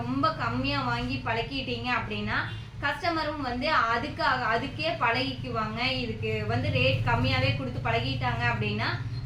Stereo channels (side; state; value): both; identical; correlation 1.00